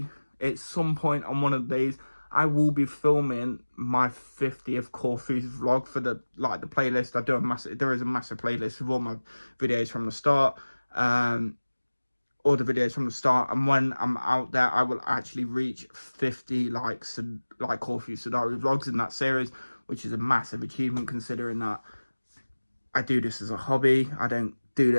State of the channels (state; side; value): inverted; both; correlation -1.00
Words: at some point on one of the days, I will be filming my 50th Corfu vlog for the playlist. There is a massive playlist with all my videos from the start, all the videos from the start, and when I'm out there, I will actually reach 50 like Corfu Sidari vlogs in that series, which is a massive achievement considering that I do this as a hobby. I don't do